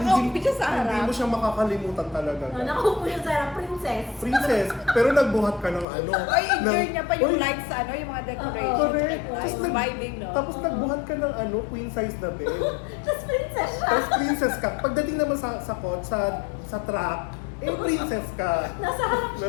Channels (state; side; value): drops out; right; at 5.9 s